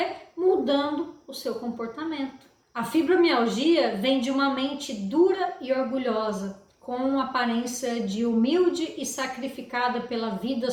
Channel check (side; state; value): both; identical; correlation 1.00